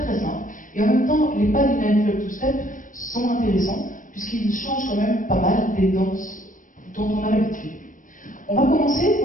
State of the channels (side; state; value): right; late; 0.38 ms